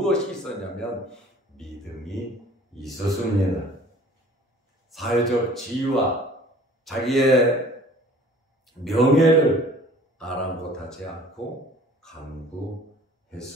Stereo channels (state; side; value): normal; both; correlation 0.50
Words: 있었냐면 믿음이 있었습니다. 사회적 지위와 자기의 명예를 아랑곳하지 않고